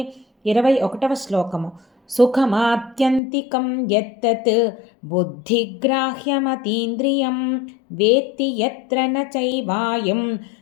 21వ శ్లోకము. సుఖమాత్యంతికం యత్తత్ బుద్ధిగ్రాహ్యమతీంద్రియం వేత్తి యత్ర న చైవాయం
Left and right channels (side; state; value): right; drops out; at 3.2 s